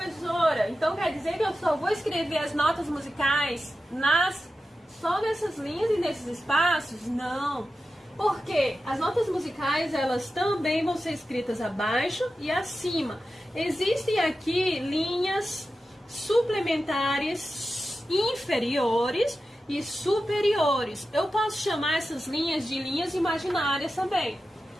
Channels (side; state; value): both; normal; correlation 0.92